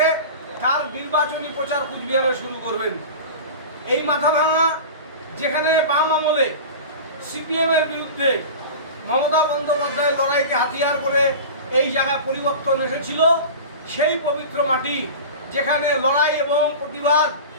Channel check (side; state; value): both; inverted; correlation -0.32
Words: তার নির্বাচনী প্রচার কুচবিহারে শুরু করবেন। এই মাথাভাঙা যেখানে বাম আমলে সিপিএমের বিরুদ্ধে মমতা বন্দ্যোপাধ্যায়ের লড়াইকে হাতিয়ার করে এই জায়গায় পরিবর্তন এসেছিল, সেই পবিত্র মাটি যেখানে লড়াই এবং প্রতিবাদ